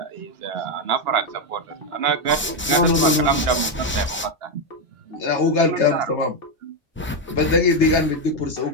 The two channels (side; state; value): both; normal; correlation 0.06